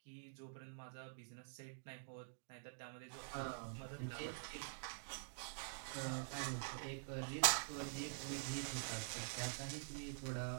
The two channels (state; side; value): silent; left; digital silence